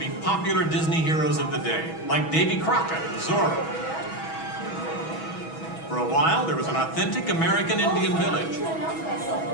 popular Disney heroes of the day, like Davy Crockett and Zorro. For a while, there was an authentic American Indian village.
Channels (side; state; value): right; late; 6.2 ms